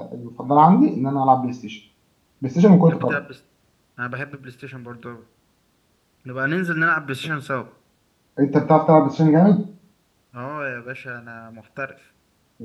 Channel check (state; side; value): identical; both; correlation 1.00